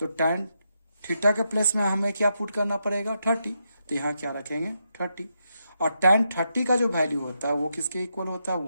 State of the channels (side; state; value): both; inverted; correlation -0.83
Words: थीटा के प्लेस में हमें क्या पुट करना पड़ेगा 30। तो यहाँ क्या रखेंगे 30, और tan 30 का जो वैल्यू होता है वो किसके इक्वल होता है